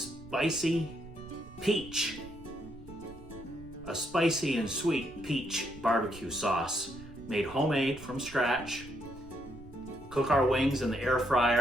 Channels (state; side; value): noise; right; rumble, 18 dB below the sound